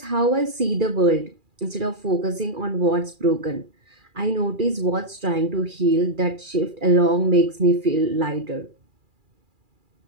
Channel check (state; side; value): late; left; 2.4 ms